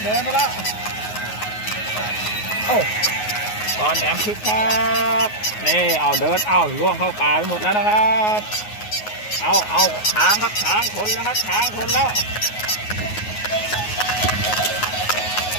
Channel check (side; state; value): right; late; 9.5 ms